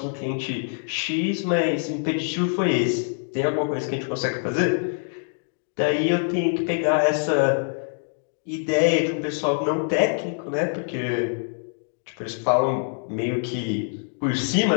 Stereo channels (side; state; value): right; silent; digital silence